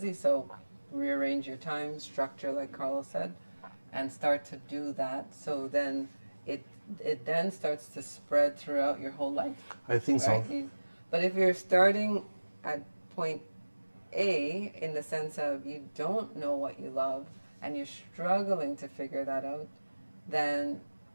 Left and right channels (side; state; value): both; inverted; correlation -1.00